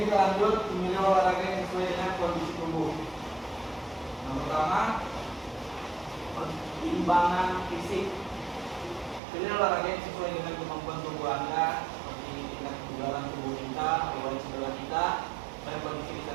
kita lanjut memilih olahraga yang sesuai dengan kondisi tubuh. Yang pertama, pertimbangan fisik. Pilih olahraga yang sesuai dengan kemampuan tubuh Anda, seperti tingkat kebugaran tubuh kita, riwayat cedera kita, dan kondisi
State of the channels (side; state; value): left; drops out; at 9.2 s